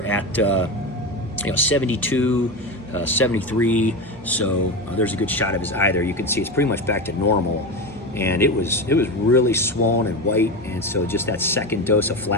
72, 73. So there's a good shot of his eye there. You can see it's pretty much back to normal. And it was really swollen and white. And so just that second dose of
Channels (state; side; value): normal; both; correlation 0.20